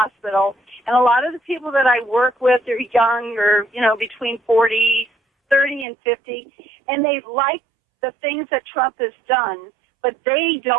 and a lot of the people that I work with are young or, between 30 and 50, and they like the things that Trump has done, but they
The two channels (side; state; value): left; drops out; at 5.9 s